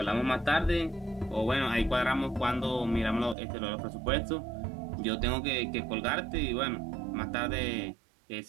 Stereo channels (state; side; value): drops out; left; at 3.4 s